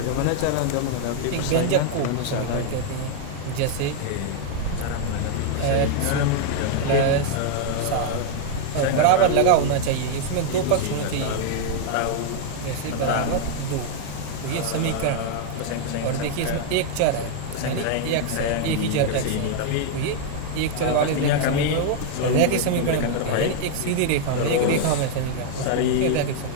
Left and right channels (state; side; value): different; both; correlation -0.01